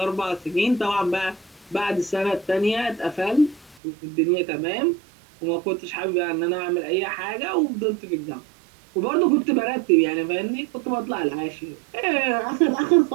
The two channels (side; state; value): left; drops out; at 3.8 s